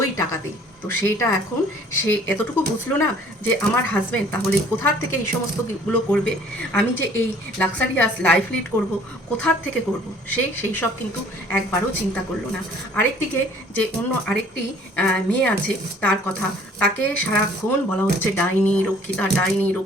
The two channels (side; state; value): both; normal; correlation 0.54